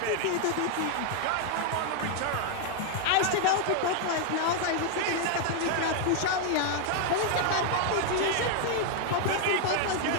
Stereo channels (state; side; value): different; both; correlation 0.00